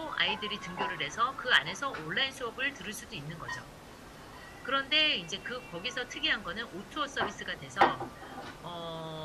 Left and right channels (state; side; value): identical; both; correlation 1.00